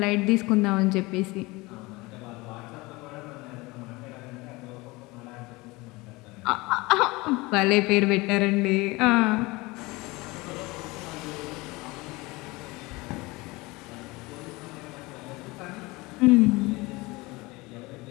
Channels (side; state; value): right; quieter; 22.9 dB